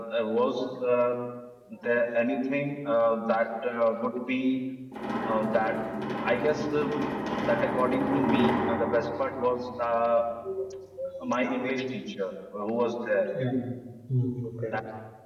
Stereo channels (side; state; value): both; identical; correlation 1.00